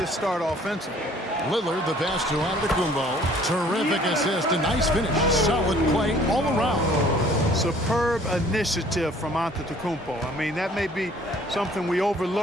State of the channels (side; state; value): both; normal; correlation 0.55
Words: start offensively. Lillard, the pass to Antetokounmpo. Terrific assist, a nice finish. Solid play all around. Superb initiative from Antetokounmpo. I mean, that may be something we